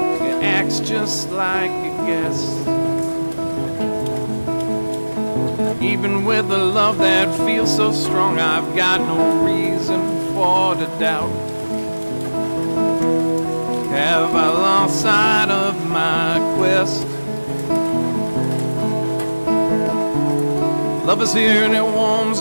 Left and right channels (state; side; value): inverted; both; correlation -1.00